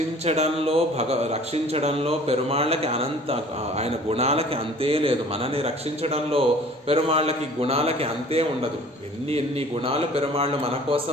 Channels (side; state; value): both; normal; correlation 0.49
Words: పెరుమాళ్ళకి ఆయన గుణాలకి అంతే లేదు. మనని రక్షించడంలో పెరుమాళ్ళకి గుణాలకి అంతే ఉండదు. ఎన్ని గుణాలు పెరుమాళ్ళు మన